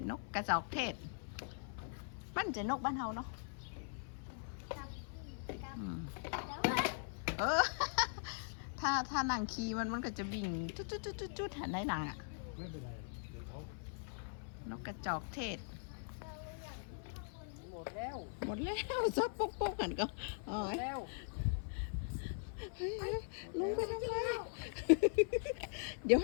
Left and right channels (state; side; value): silent; right; 50 dB below the other